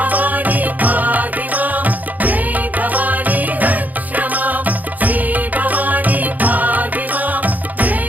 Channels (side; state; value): left; late; 0.080 ms